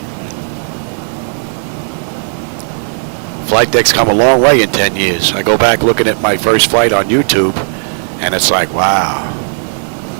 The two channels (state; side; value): silent; left; digital silence